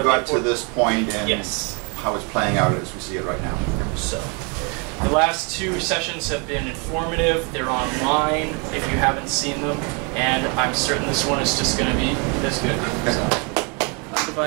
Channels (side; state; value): left; quieter; 33.4 dB